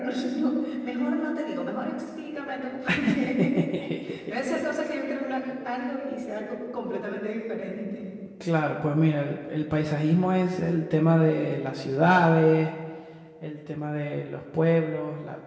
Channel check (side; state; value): both; identical; correlation 1.00